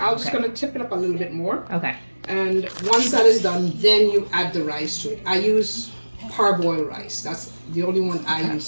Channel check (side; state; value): both; inverted; correlation -1.00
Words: I'm just gonna tip it up a little bit more. Okay. And once that is done, then you add the rice to it. I use parboiled rice. That's the only one I